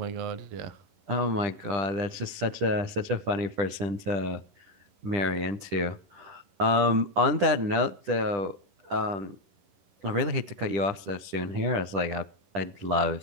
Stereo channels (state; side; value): late; left; 10 ms